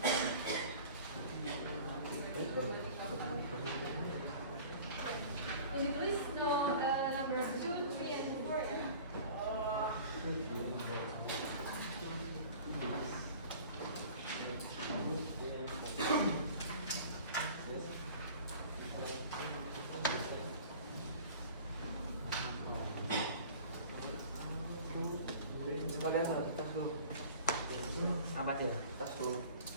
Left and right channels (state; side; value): inverted; both; correlation -0.43